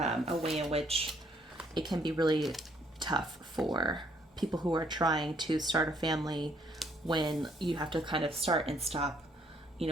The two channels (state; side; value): normal; both; correlation 0.67